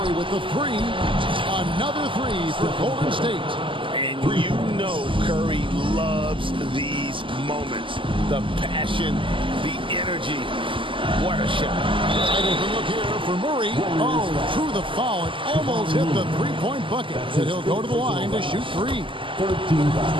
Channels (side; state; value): left; late; 0.25 ms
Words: with the three. Another three for Golden State. And you know Curry loves these moments. The passion, the energy. What a shot. Right open look here for Murray. Oh, through the foul. It almost hit the three-point bucket. And he'll go to the line to shoot three. 13